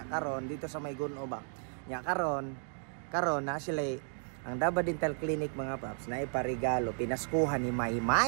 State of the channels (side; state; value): left; silent; 55 dB below the other